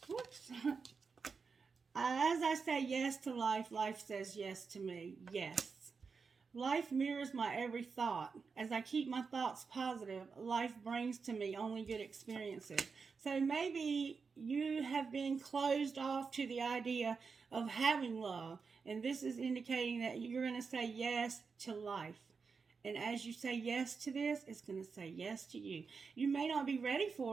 Whoops. As I say yes to life, life says yes to me. Yes. Life mirrors my every thought. As I keep my thoughts positive, life brings to me only good experiences. So maybe you have been closed off to the idea of having love. And this is indicating that you're going to say yes to life. And as you say yes to this, it's going to say yes to you. You may not be ready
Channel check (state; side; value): quieter; left; 5.2 dB